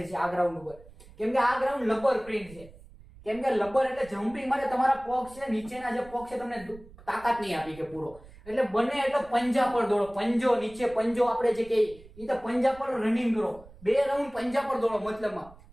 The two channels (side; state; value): right; noise; rumble, 21 dB below the sound